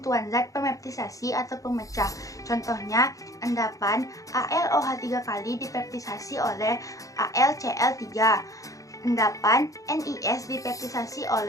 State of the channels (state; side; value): late; right; 0.16 ms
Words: zat pemeptisasi atau pemecah. Contohnya, endapan AlOH 3 kali dipeptisasi oleh AlCl3. Endapan NiS dipeptisasi